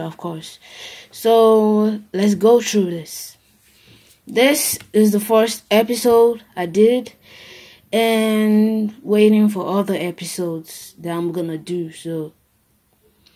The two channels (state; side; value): identical; both; correlation 1.00